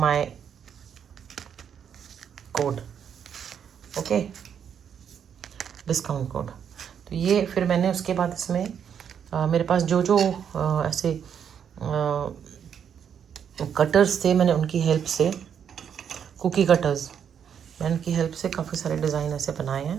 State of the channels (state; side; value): quieter; left; 8.1 dB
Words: code. Okay, discount code. तो ये फिर मैंने उसके बाद इसमें मेरे पास जो जो ऐसे कटर्स थे, मैंने उनकी हेल्प से, कुकी कटर्स, मैंने उनकी हेल्प से काफ़ी सारे डिज़ाइन ऐसे बनाए